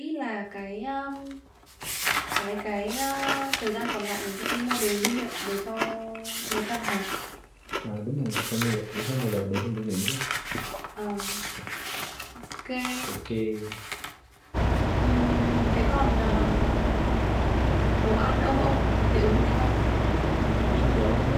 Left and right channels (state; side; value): identical; both; correlation 1.00